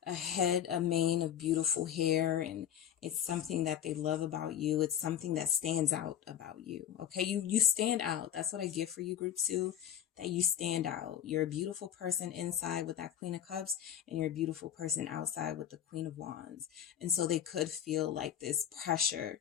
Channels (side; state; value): right; quieter; 10.1 dB